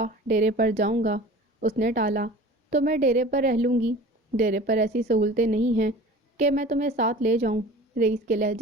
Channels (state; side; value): normal; both; correlation 0.41